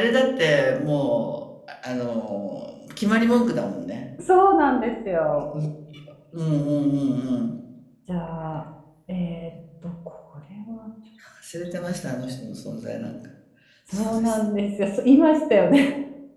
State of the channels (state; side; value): identical; both; correlation 1.00